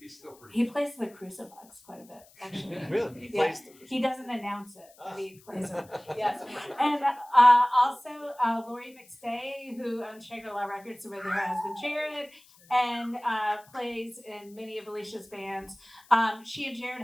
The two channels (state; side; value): noise; left; hiss, 26 dB below the sound